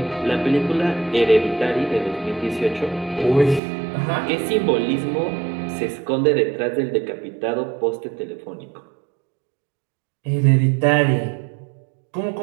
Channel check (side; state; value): left; drops out; at 3.6 s